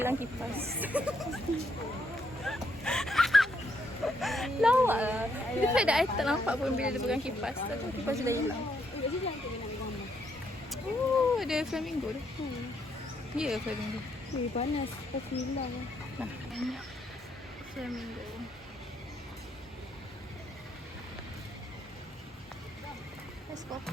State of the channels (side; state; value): both; normal; correlation 0.75